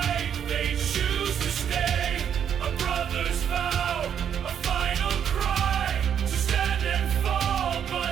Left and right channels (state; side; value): quieter; left; 8.6 dB